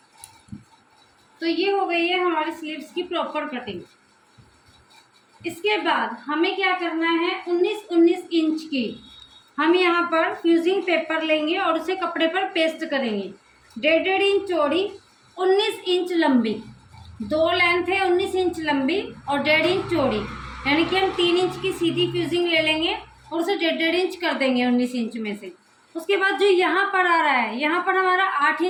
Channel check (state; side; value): identical; both; correlation 1.00